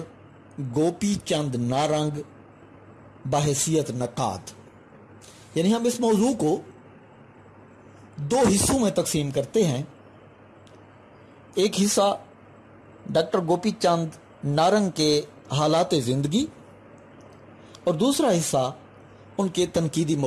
گوپی چند نارنگ بحیثیت نقاد. یعنی ہم اس موضوع کو دو حصوں میں تقسیم کرتے ہیں. ایک حصہ ڈاکٹر گوپی چند نارنگ کے حالات زندگی اور دوسرا حصہ ان کے تنقیدی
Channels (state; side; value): identical; both; correlation 1.00